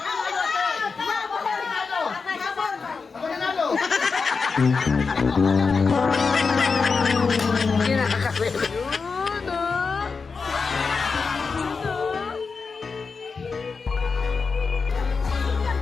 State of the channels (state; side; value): quieter; right; 4.9 dB